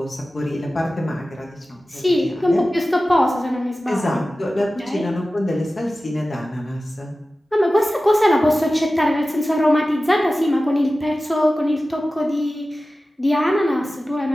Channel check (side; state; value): both; normal; correlation 0.95